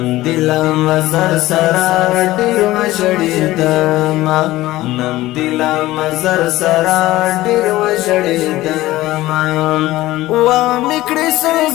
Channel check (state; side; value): quieter; right; 17.0 dB